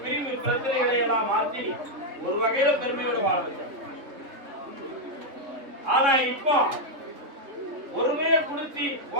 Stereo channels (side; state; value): left; late; 3.6 ms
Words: பிரிவு பிரச்சனைகளை எல்லாம் மாற்றி ஒரு வகையில பெருமையோடு வாழ வச்சேன். ஆனா இப்போ ஒருமையை குடிச்சு